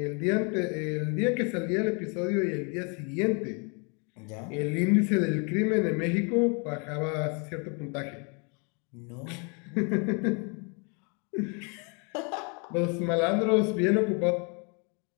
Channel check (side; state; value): right; quieter; 35.2 dB